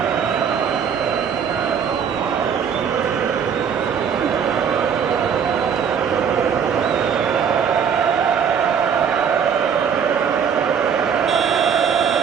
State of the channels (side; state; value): left; quieter; 7.3 dB